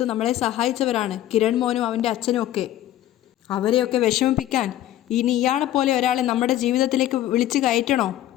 നമ്മളെ സഹായിച്ചവരാണ് കിരൺ മോനും അവൻ്റെ അച്ഛനും ഒക്കെ. അവരെയൊക്കെ വിഷമിപ്പിക്കാൻ ഇനി ഇയാളെ പോലെ ഒരാളെ നമ്മുടെ ജീവിതത്തിലേക്ക് വിളിച്ച് കയറ്റണോ?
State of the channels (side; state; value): right; quieter; 13.3 dB